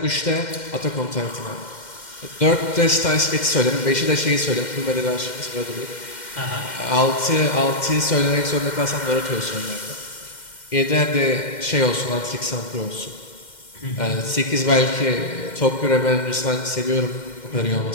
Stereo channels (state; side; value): late; right; 2.1 ms